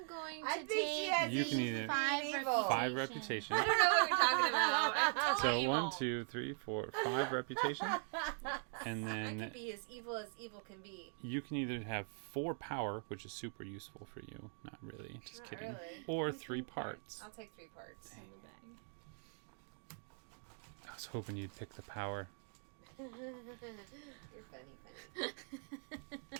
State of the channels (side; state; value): left; silent; 50 dB below the other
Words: going I to think she take has You can either- 5 evil. reputation. 5 reputation. I don't know what you're talking about. I'm totally So evil. 1, 2, 3, 4, 5 reputation. And I could then be as evil can be. you can either have 4 power, which is super useful for you. Not really, just Not kidding. really. Or Like 3 3 parts. I'll take 3 parts. In the bag. I was hoping you'd pick the power. You're funny.